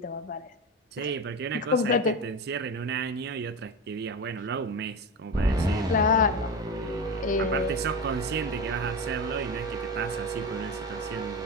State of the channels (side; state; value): both; normal; correlation 0.22